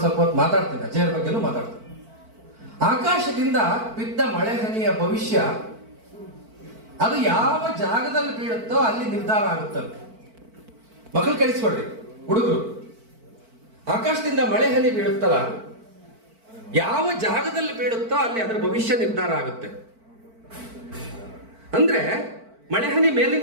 ಸ್ವಲ್ಪ ಹೊತ್ತು ಮಾತಾಡ್ತೀನಿ, ಅಜಯರ ಬಗ್ಗೆನೂ ಮಾತಾಡ್ತೀನಿ. ಆಕಾಶದಿಂದ ಬಿದ್ದ ಮಳೆ ಹನಿಯ ಭವಿಷ್ಯ ಅದು ಯಾವ ಜಾಗದಲ್ಲಿ ಬೀಳುತ್ತೋ ಅಲ್ಲಿ ನಿರ್ಧಾರ ಆಗುತ್ತಂತೆ. ಮಕ್ಕಳು ಕಳಿಸ್ಕೊಡ್ರಿ, ಹುಡುಗರು. ಆಕಾಶದಿಂದ ಮಳೆ ಹನಿ ಬೀಳುತ್ತಲ್ಲ, ಯಾವ ಜಾಗದಲ್ಲಿ ಬೀಳುತ್ತೋ ಅಲ್ಲಿ ಅದರ ಭವಿಷ್ಯ ನಿರ್ಧಾರ ಆಗುತ್ತೆ. ಅಂದ್ರೆ ಮಳೆ ಹನಿ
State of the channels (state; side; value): late; left; 4.5 ms